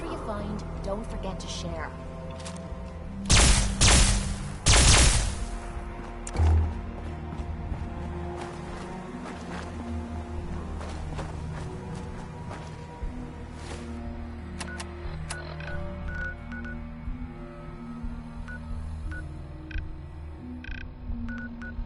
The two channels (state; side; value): identical; both; correlation 1.00